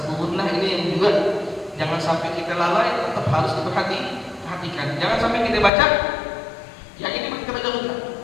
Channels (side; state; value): right; drops out; at 5.7 s